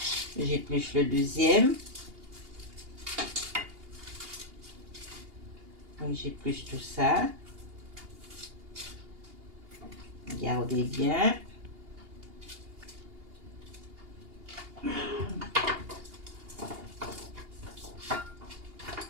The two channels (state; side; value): late; left; 2.8 ms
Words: j'épluche le deuxième. Donc j'épluche tout ça. Regardez bien.